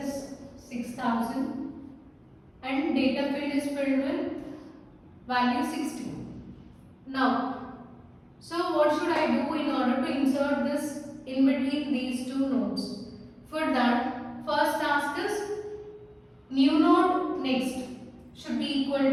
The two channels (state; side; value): identical; both; correlation 1.00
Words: 6000 and data field is filled with value 60. Now, so what should I do in order to insert this in between these two nodes? For that, first task is new node next should be equal